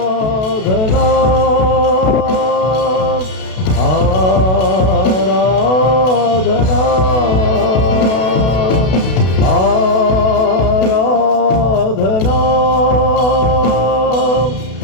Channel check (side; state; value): right; late; 32 ms